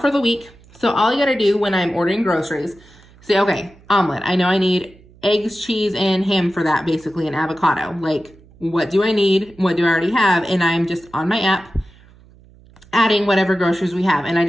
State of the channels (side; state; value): right; noise; hum, 26 dB below the sound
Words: for the week. So all you gotta do when I'm ordering groceries, say, okay, omelet. I know I need eggs, cheese, and ham for that, basically, and avocado. Like, what do I need? What do I already have? And I'm just on my app adding whatever groceries we have. And I